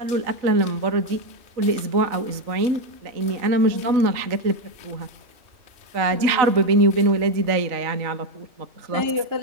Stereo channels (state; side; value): late; left; 3.9 ms